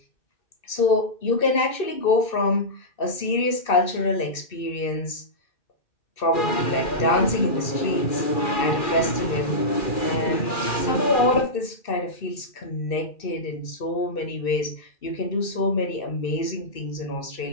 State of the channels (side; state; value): right; late; 2.6 ms